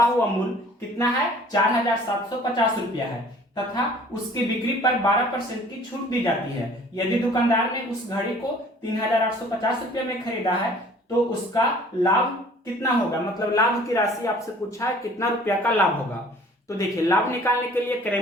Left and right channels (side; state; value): both; normal; correlation 0.52